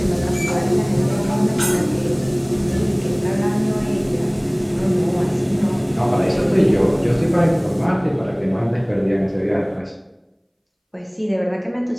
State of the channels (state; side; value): identical; both; correlation 1.00